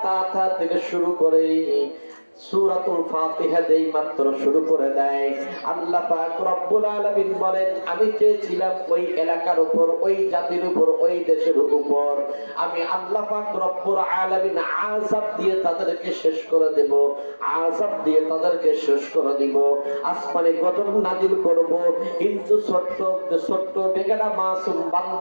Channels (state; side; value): inverted; both; correlation -1.00